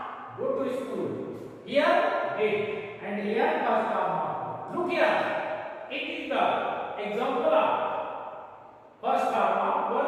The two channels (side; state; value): both; identical; correlation 1.00